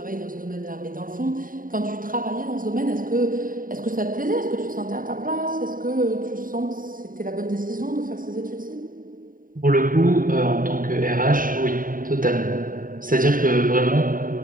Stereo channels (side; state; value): left; late; 0.40 ms